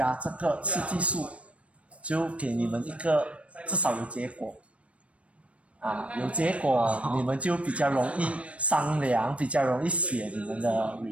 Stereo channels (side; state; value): left; late; 0.063 ms